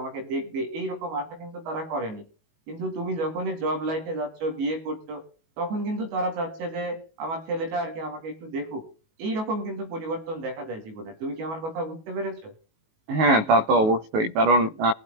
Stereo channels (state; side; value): late; left; 19 ms